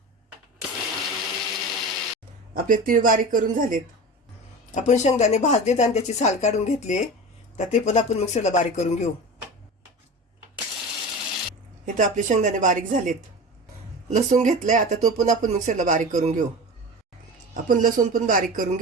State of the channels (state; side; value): normal; both; correlation 0.31